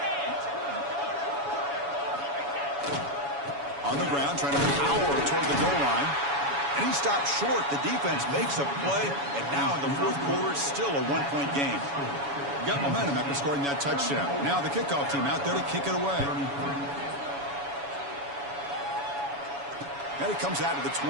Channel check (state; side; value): late; left; 7.1 ms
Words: On the ground, trying to power toward the goal line. And he stops short. The defense makes a play. And now in the fourth quarter, it's still a 1-point game. Got momentum after scoring that touchdown. Now the kickoff team out there to kick it away. And it comes out of the